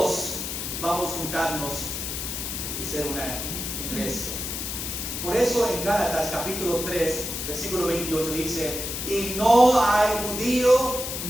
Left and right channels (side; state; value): left; noise; hiss, 4 dB below the sound